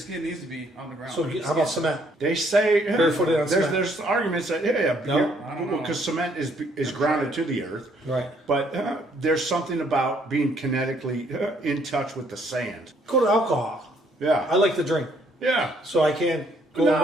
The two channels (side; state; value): both; normal; correlation 0.67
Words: needs to be on the ground. So how about cement? They say Barefooted on cement. there's arguments that No? I don't know. because cement is grounded to the earth, Right. but there's something about being kinetically in touch with the sand. Go to alcohol. Yeah, I like to drink, yeah. so I can't go and